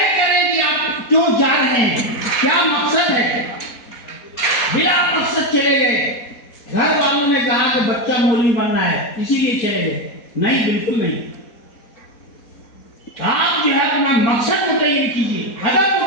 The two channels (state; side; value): late; right; 4.2 ms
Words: کریں کہ آپ کیوں جا رہے ہیں، کیا مقصد ہے. بلا مقصد چلے گئے، گھر والوں نے کہا کہ بچہ مولوی بننا ہے اسی لیے چلے گئے، نہیں، بالکل نہیں. آپ جو ہے اپنا مقصد متعین کیجیے، ہدف